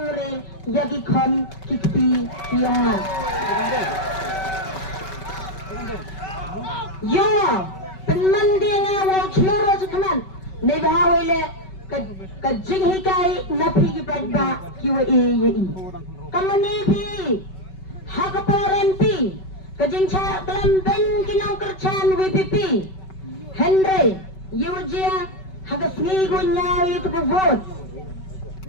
yure yagi kon kikpi yung nga yung penmandi nga wang chloro sa kaman na ibahaway le kajing hikay napi kipagba kiwa i kamanipi hakaporempi kajing cha kalambeng kinang kerchan WPP Henry Yujia hagas ngigo niya itu ke vote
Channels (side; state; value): right; late; 5.3 ms